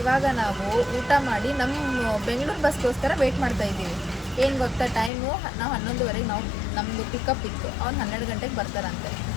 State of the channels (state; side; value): drops out; right; at 5.1 s